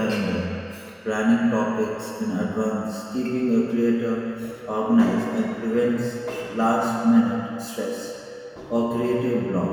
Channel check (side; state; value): both; identical; correlation 1.00